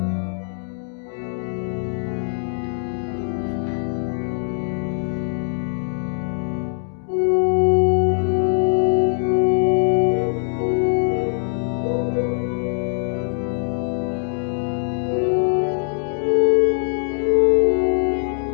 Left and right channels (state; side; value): silent; right; digital silence